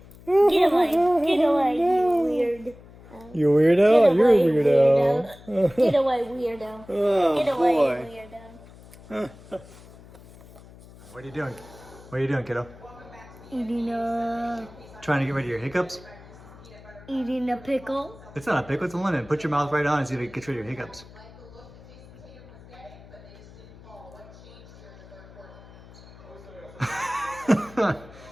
Get away. Get away, you weird. You weirdo? Get You're a away, weirdo. Get away, weirdo. Oh Get away, boy. weirdo. What are you doing? What are you doing, kiddo? Eating a Trying to get rid of your hiccups? pickle. It's not a pickle, it's a lemon. Put your mouth right on and see if it gets rid of your hiccups.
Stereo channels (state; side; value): noise; left; hum, 21 dB below the sound